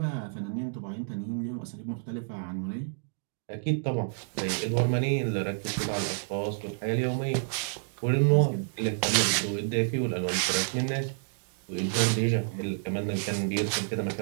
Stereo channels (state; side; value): silent; left; digital silence